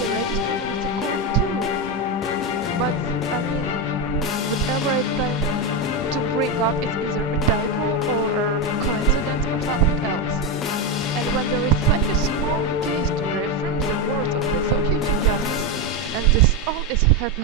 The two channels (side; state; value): both; normal; correlation 0.10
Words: registry and with the court too. But, I mean, whatever I try to bring up is either a typo or a coincidence or something else. And when there is such a small case to reaffirm the words of the Associate Chief Justice, and this all is